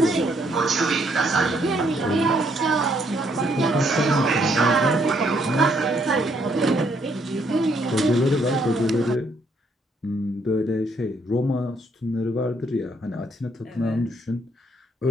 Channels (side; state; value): both; normal; correlation 0.70